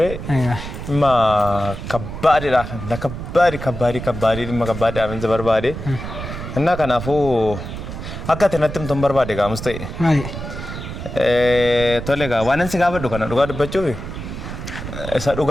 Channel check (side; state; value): right; noise; rumble, 8 dB below the sound